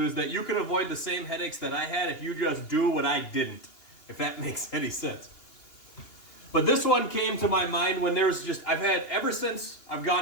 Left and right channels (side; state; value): right; late; 2.7 ms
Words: is that you can avoid the same headaches that I had if you just do what I didn't, if that makes any sense. But this one came to my mind when I've had, ever since I've